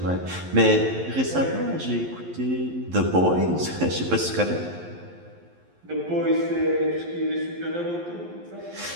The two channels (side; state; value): left; late; 11 ms